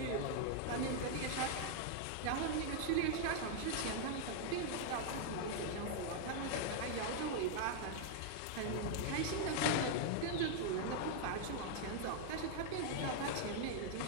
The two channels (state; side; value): different; both; correlation 0.00